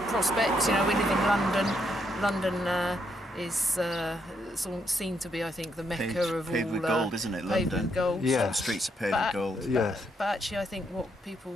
of prospects. We live in London. London is seen to be, I think, the mecca of all. Paved with gold, isn't it? Paved London. With gold. Yeah. The streets are paved with gold. Yes. But actually, I think what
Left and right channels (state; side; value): normal; both; correlation 0.76